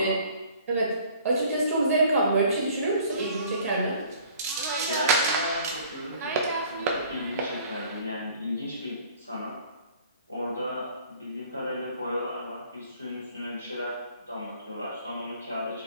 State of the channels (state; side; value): inverted; both; correlation -0.53